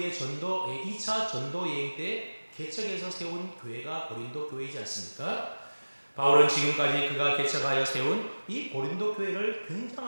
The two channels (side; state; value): both; inverted; correlation -1.00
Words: 2차 전도 여행 때 개척해서 세운 교회가 고린도 교회이지 않습니까? 바울은 지금까지 그가 개척하여 세운 이 고린도 교회를